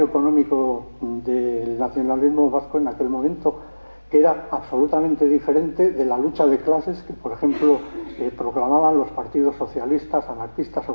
económico del nacionalismo vasco en aquel momento, que era absolutamente diferente de la lucha de clases que, por ejemplo, proclamaban los partidos socialistas, anarquistas o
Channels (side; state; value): both; inverted; correlation -1.00